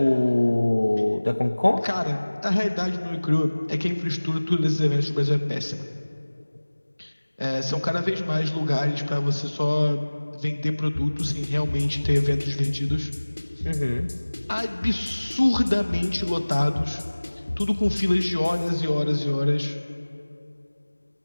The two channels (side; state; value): both; inverted; correlation -1.00